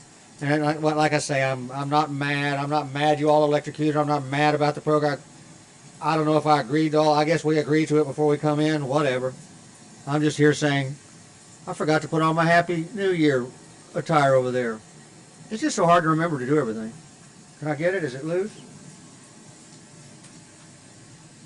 And like I say, I'm not mad. I'm not mad you all electrocuted. I'm not mad about the program. I don't know if I agreed to all. I guess we agreed to it before we come in. Whatever. I'm just here saying, I forgot to put on my Happy New Year attire over there. It's just so hard to remember to do everything. Can I get it? Is it loose?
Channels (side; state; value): both; identical; correlation 1.00